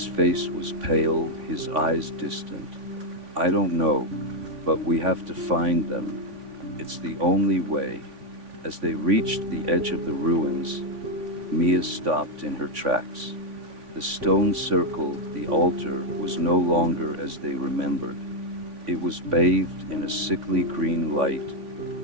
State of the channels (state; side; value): late; left; 3.5 ms